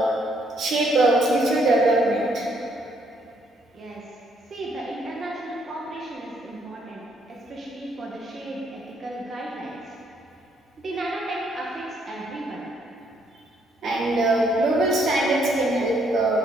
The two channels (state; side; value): normal; both; correlation 0.70